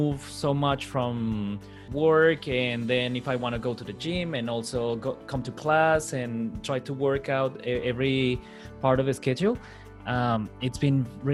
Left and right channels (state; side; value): identical; both; correlation 1.00